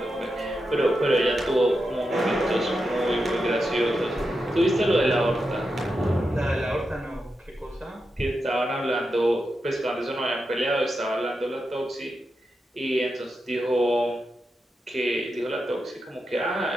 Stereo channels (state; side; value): normal; both; correlation 0.88